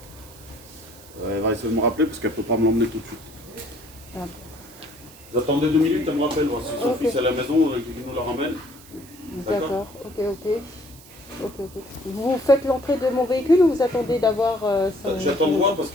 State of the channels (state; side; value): noise; right; hiss, 21 dB below the sound